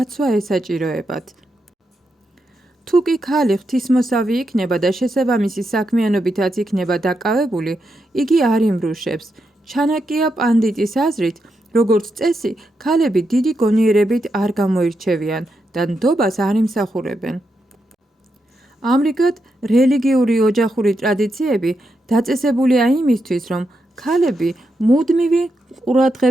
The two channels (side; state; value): both; normal; correlation 0.84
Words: ესაჭიროებათ. თუ კი ქალი ღვთისმოსავი იქნება და შესაბამისი საქმიანობითაც იქნება დაკავებული, იგი არ იმრუშებს. ჩანაკია პანდიტის აზრით, როგორც წესი, ქალები დიდი გონიერებით არ გამოირჩევიან და ნდობას არ იმსახურებენ. ამრიგად, რელიგიური ოჯახური ტრადიციები დაწესებულია იმისთვის, რომ ქალები მუდმივი